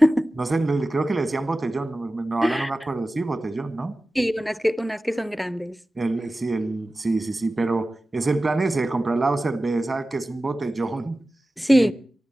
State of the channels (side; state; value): both; normal; correlation 0.95